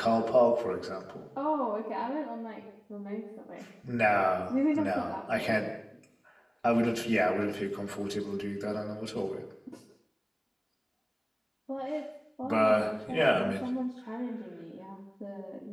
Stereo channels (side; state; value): both; identical; correlation 1.00